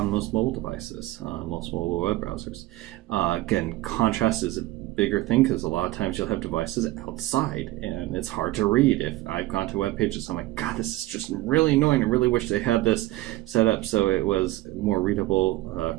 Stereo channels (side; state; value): left; quieter; 17.7 dB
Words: most mobile devices, most mobile web browsers. Again, contrast is a bigger thing because a lot of times you'll have devices outside and it's hard to read. If I've gone to web pages, I'm like, God, this is just really annoying. I really wish they had this set up so it was more readable